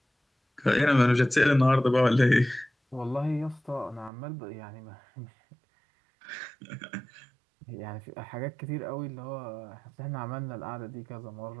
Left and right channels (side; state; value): left; drops out; at 4.1 s